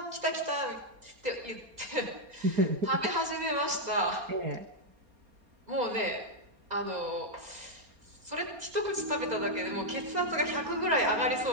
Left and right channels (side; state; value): left; late; 4.3 ms